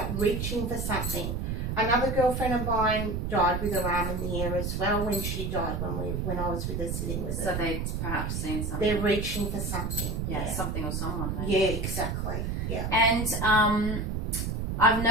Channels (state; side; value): noise; right; rumble, 2 dB below the sound